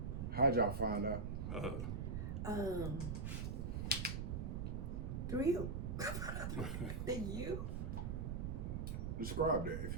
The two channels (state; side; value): noise; right; rumble, 2 dB below the sound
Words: How'd y'all find out? Through you. You? Describe that if